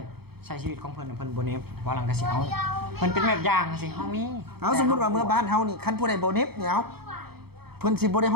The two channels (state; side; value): late; left; 0.96 ms